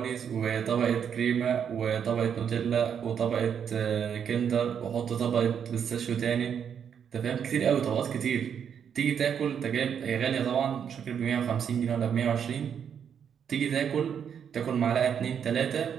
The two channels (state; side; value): quieter; left; 7.9 dB